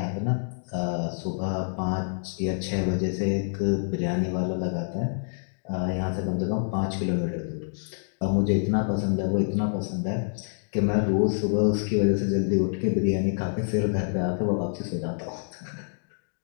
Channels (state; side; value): silent; right; digital silence